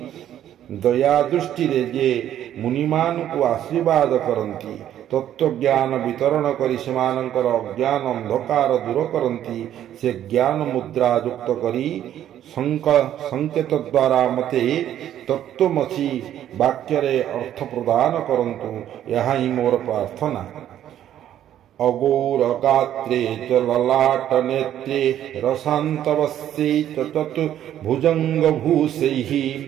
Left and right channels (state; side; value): quieter; left; 11.2 dB